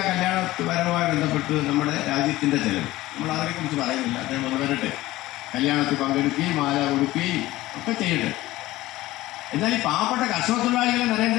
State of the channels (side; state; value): right; quieter; 17.2 dB